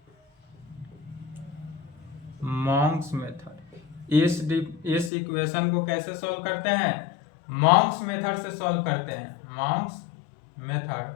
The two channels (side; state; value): right; drops out; at 5.1 s